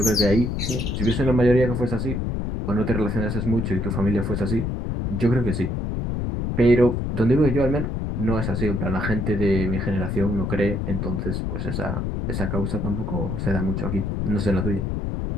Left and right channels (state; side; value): noise; left; rumble, 1 dB below the sound